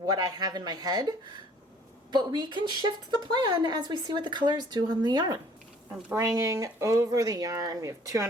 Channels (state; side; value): normal; both; correlation 0.56